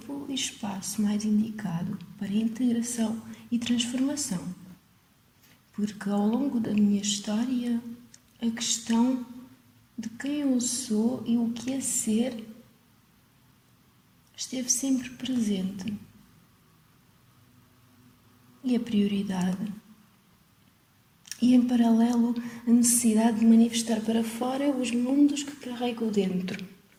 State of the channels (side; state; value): both; identical; correlation 1.00